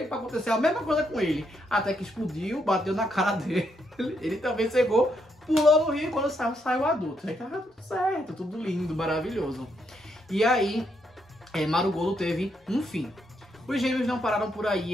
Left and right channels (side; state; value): both; normal; correlation 0.77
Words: para acontecer a mesma coisa com ele. Até que explodiu, bateu na cara dele. Ele também cegou, pulou no rio e quando saiu adulto. Aí tava tudo certo, tudo lindo, maravilhoso. E aí, Marugodo teve um fim. Os gêmeos não pararam por aí,